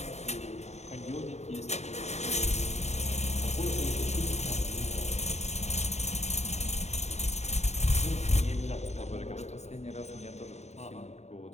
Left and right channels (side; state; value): right; late; 0.32 ms